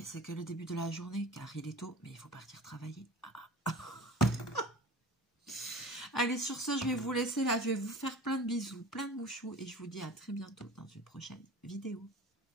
c'est que le début de la journée, car il est tôt, mais il faut partir travailler. Allez, sur ce, je vais vous laisser là. Je vais vous faire plein de bisous, plein de mouchous. Et je vous dis à très bientôt dans une prochaine vidéo.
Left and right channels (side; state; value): both; normal; correlation 0.39